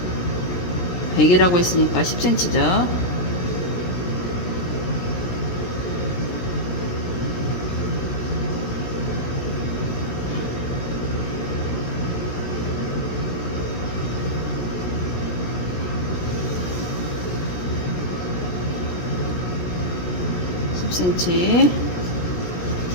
100이라고 했으니까 10cm죠.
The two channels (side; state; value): right; late; 17 ms